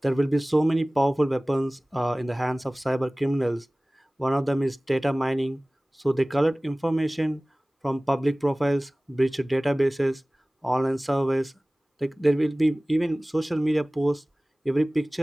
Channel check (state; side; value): normal; both; correlation 0.98